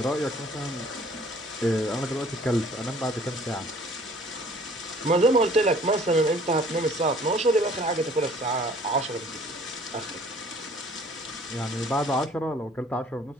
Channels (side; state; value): both; normal; correlation 0.54